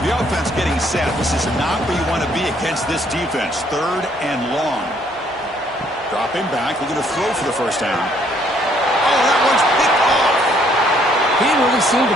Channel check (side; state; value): both; normal; correlation 0.66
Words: the offense getting set. This is not where you want to be against this defense. 3rd and long. Dropping back. We're going to throw for the first down. Oh, that one's picked off. He didn't really seem to